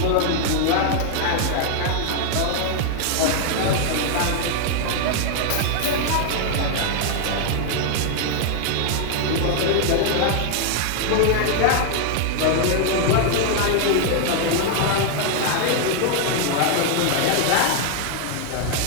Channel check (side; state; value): both; different; correlation 0.00